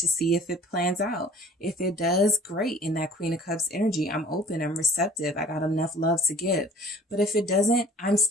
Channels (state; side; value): normal; both; correlation 0.49